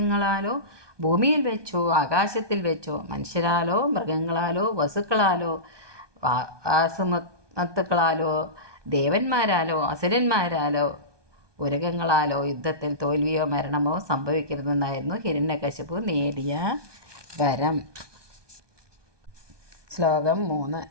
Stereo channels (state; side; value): late; left; 1.2 ms